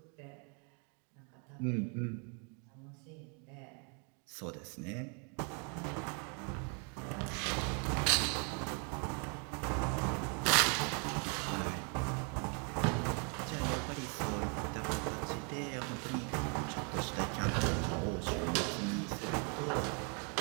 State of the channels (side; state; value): left; quieter; 37.8 dB